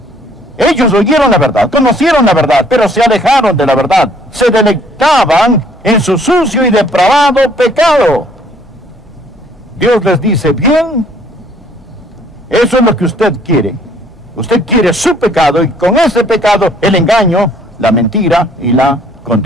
Ellos oyeron la verdad, conocieron la verdad, pero se alejaron de la verdad. Se deleitaban en su sucio y depravado pecado. Dios les dice, bien, eso es lo que usted quiere. Usted quiere su pecado y con ese pecado el engaño, la mentira y la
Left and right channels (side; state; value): both; normal; correlation 0.61